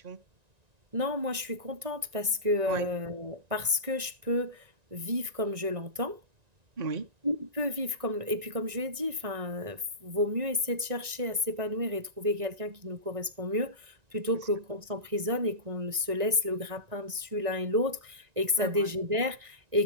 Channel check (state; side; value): late; left; 1.9 ms